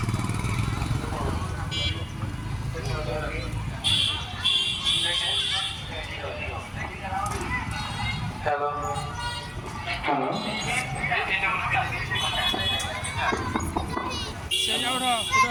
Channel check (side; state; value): both; identical; correlation 1.00